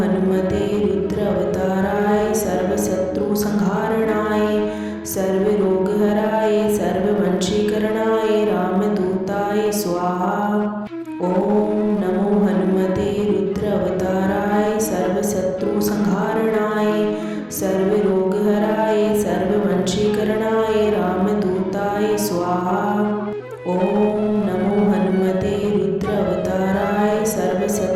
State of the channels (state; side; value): identical; both; correlation 1.00